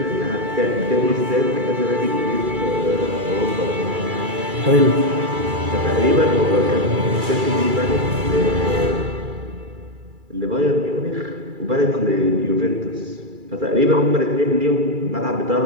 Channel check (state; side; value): late; left; 2.3 ms